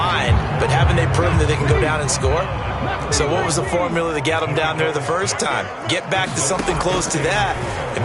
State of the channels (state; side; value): identical; both; correlation 1.00